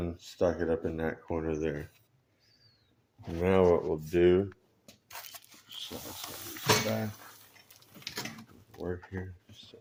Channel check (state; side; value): identical; both; correlation 1.00